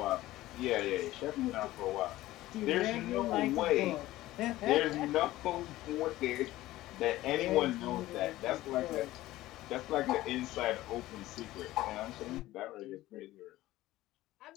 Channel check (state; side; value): quieter; right; 16.4 dB